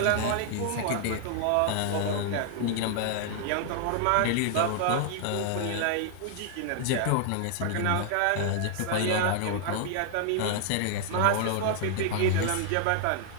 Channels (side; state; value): both; different; correlation 0.00